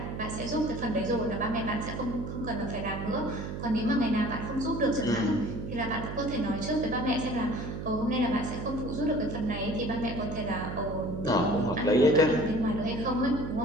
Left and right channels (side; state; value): right; noise; hum, 6 dB below the sound